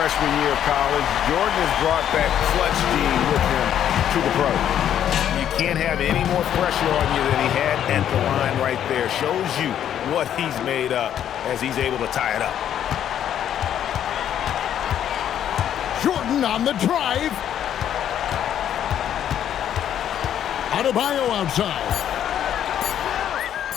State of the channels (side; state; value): right; quieter; 10.1 dB